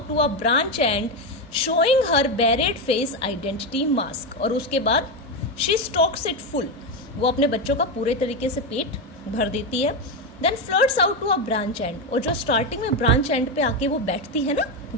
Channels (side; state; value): both; normal; correlation 0.11